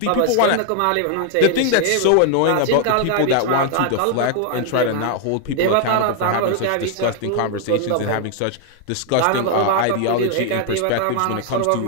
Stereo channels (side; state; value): both; different; correlation 0.00